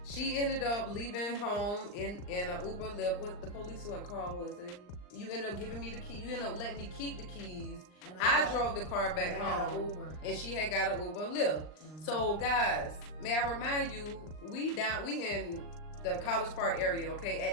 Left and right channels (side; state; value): right; late; 39 ms